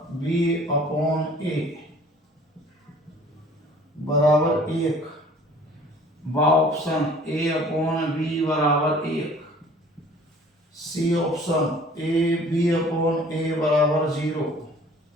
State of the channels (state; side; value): normal; both; correlation 0.51